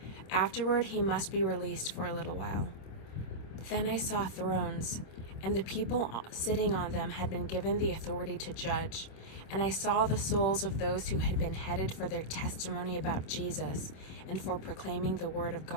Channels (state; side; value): late; right; 26 ms